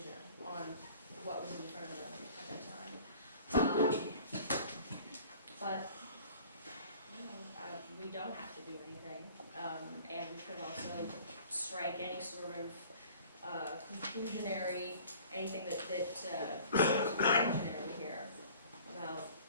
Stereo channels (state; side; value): inverted; both; correlation -0.48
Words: on what was in front of them at that time. But, you know, we don't have to do anything, and we could also strike any sort of conclusionary, anything that conclusionary here about